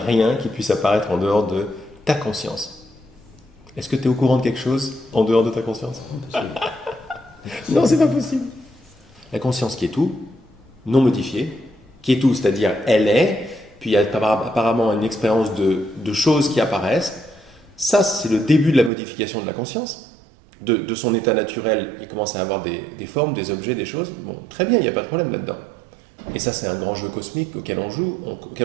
qui puisse apparaître en dehors de ta conscience. Est-ce que tu es au courant de quelque chose en dehors de ta conscience? Non, c'est pas possible. La conscience qui est tout, non modifiée, qui est tout, c'est-à-dire elle est, puis il y a apparemment une expérience de choses qui apparaissent. Ça, c'est le début de la modification de la conscience. De son état naturel, il commence à avoir des formes, des objets, des choses. Bon, très bien, il n'y a pas de problème là-dedans. Et ça, c'est un grand jeu cosmique auquel on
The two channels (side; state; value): left; drops out; at 18.9 s